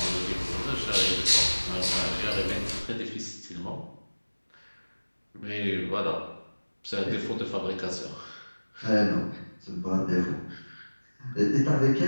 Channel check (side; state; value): both; inverted; correlation -1.00